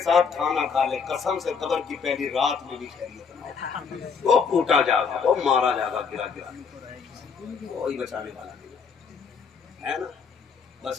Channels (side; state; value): right; quieter; 5.9 dB